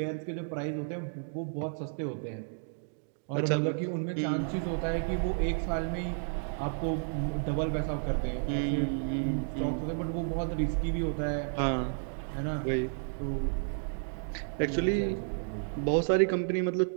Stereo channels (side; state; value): left; silent; digital silence